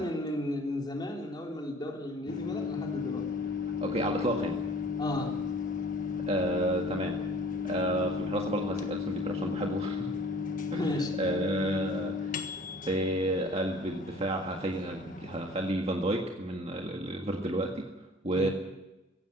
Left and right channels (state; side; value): normal; both; correlation 0.49